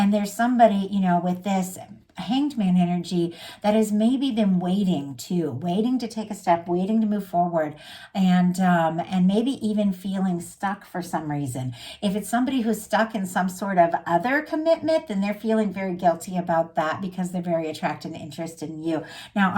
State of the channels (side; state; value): both; identical; correlation 1.00